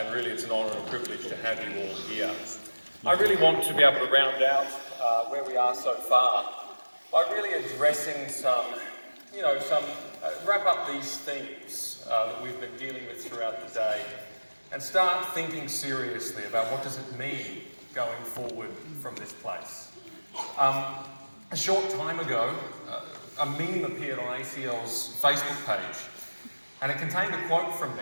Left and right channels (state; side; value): inverted; both; correlation -1.00